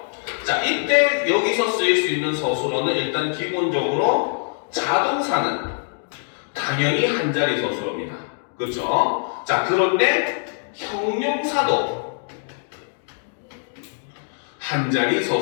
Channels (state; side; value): silent; right; digital silence